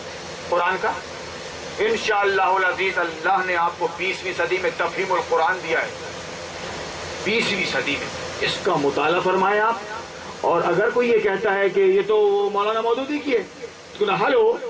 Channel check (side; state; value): both; identical; correlation 1.00